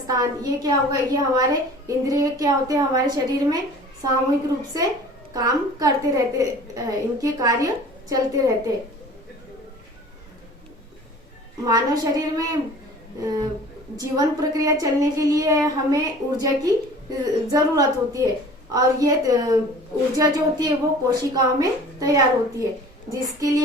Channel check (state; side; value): normal; both; correlation 0.45